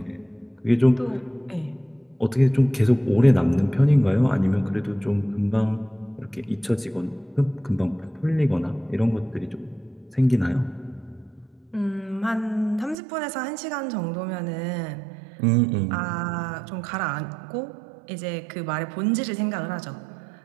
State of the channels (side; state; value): left; drops out; at 13.0 s